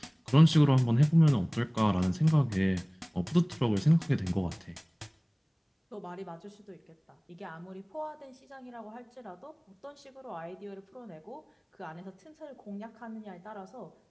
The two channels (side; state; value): both; identical; correlation 1.00